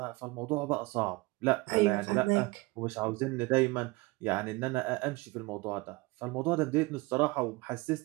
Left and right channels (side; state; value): left; quieter; 23.2 dB